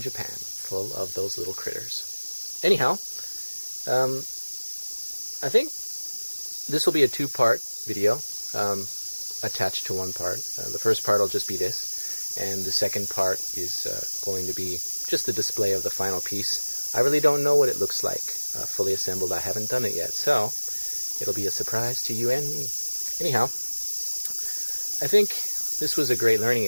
full of those little critters. Anyhow, I think this will be a two-part video attached to one part. The first part will just be this, and the second part is going to be just the display of the final piece. I really don't know what it looks like fully assembled. I haven't done it yet, so it'll be a surprise to you and me. Anyhow, I think this was a great learning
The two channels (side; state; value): both; inverted; correlation -1.00